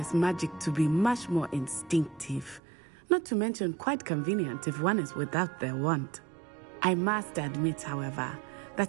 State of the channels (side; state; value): left; drops out; at 2.6 s